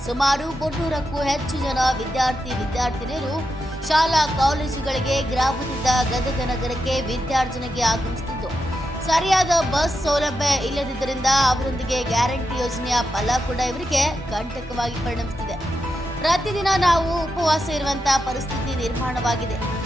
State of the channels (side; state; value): both; normal; correlation 0.87